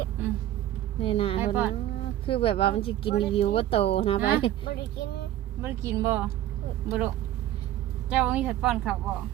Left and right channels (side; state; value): left; quieter; 12.9 dB